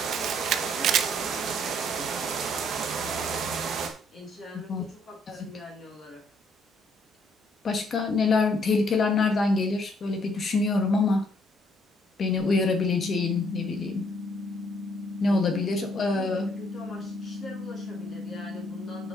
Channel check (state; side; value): normal; both; correlation 0.68